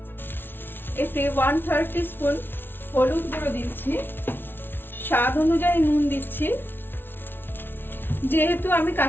এতে 1/3 টিস্পুন হলুদ গুঁড়ো দিচ্ছি, স্বাদ অনুযায়ী নুন দিচ্ছি। যেহেতু আমি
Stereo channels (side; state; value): right; late; 0.10 ms